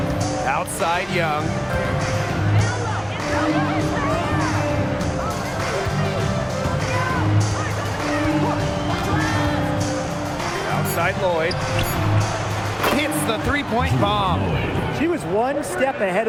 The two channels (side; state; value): both; identical; correlation 1.00